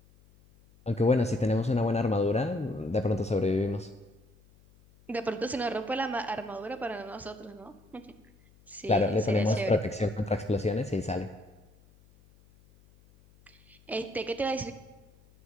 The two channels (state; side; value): noise; left; hum, 29 dB below the sound